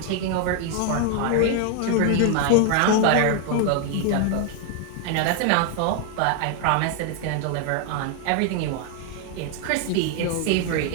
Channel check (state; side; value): different; both; correlation 0.00